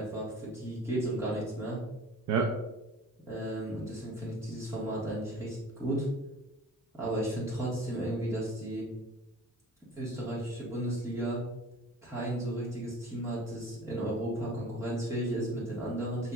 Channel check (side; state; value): both; normal; correlation 0.44